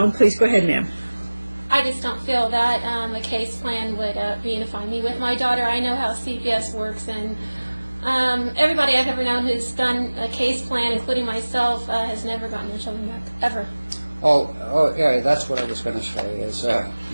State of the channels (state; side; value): inverted; both; correlation -1.00